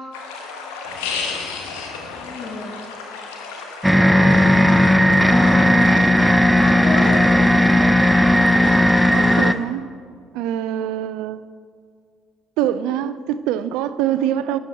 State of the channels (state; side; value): normal; both; correlation 0.89